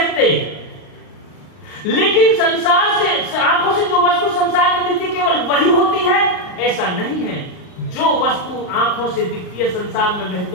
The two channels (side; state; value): right; late; 38 ms